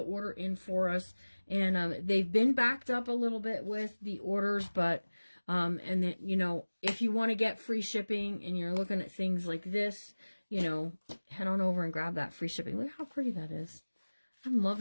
order in for us. And they've been backed up a little bit with the orders, but and then, you know, if you want to get free shipping and you're looking at things like this, you know, head on over and grab that free shipping. Look how pretty that is. I'm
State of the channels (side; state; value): both; inverted; correlation -1.00